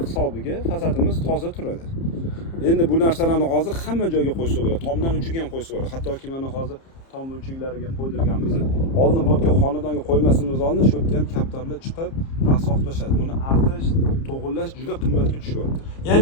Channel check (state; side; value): late; right; 30 ms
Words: hisobiga fasadimiz toza turadi. Endi bu narsalarni hozir hamma joyga qo'ysa bo'ladi. Tomdan uchiga ham qo'ysa bo'ladi. Hattoki mana hozir tom uchiklariga qo'ydirganmiz. Oldin bu yerga xonadonga qo'ymasimiz oldin shu yerda ham kaptarlar chiqib, rasoq tashadi. Buni artish, to'g'irlash juda qimmatga tushyapti. Ya'ni